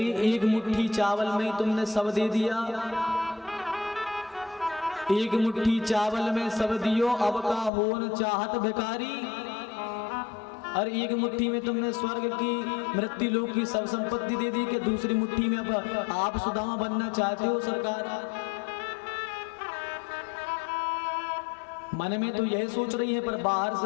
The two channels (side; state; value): right; drops out; at 7.7 s